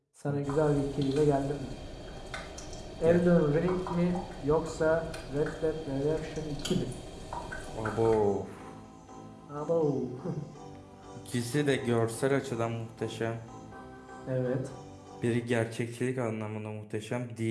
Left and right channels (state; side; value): identical; both; correlation 1.00